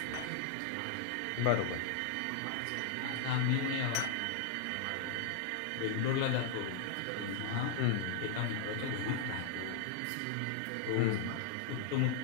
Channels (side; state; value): both; different; correlation 0.00